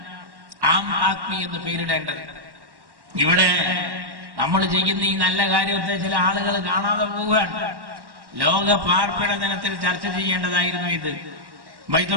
ആം ആദ്മി എന്ന് പേരിടേണ്ടത്. ഇവിടെ നമ്മൾ ചെയ്യുന്ന ഈ നല്ല കാര്യത്തെ ചില ആളുകൾ കാണാതെ പോവുകയാണ്. ലോക പാർപ്പിട ദിനത്തിൽ ചർച്ച ചെയ്യേണ്ടതായിരുന്നു ഇത്.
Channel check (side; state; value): left; late; 1.1 ms